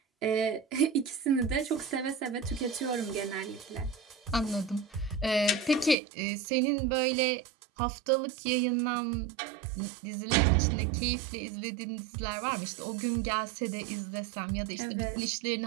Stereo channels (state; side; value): drops out; left; at 6.0 s